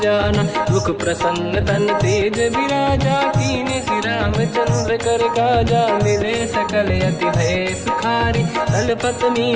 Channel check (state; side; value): identical; both; correlation 1.00